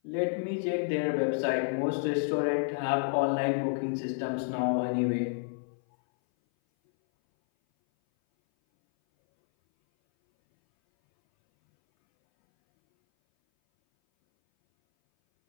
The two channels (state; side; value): silent; right; 58 dB below the other